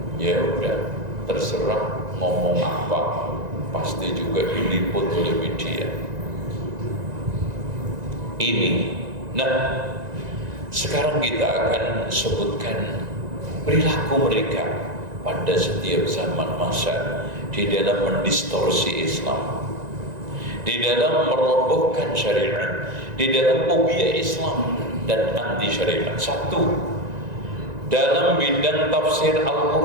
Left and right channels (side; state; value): left; late; 1.9 ms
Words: Ya udah, terserah ngomong apa, pasti juga diliput oleh media. Ini, nah sekarang kita akan sebutkan perilaku mereka pada setiap zaman masa di dalam mendistorsi Islam, di dalam merobohkan syariat, di dalam fobia Islam dan anti syariat. Satu, dalam bidang tafsir